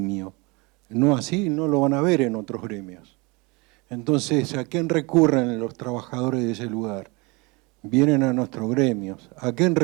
No así, no lo van a ver en otros gremios. Entonces, ¿a quién recurren los trabajadores de ese lugar? Vienen a nuestros gremios. ¿A quién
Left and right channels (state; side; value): quieter; left; 27.0 dB